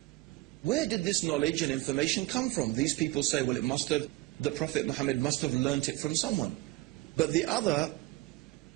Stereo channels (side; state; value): left; quieter; 19.4 dB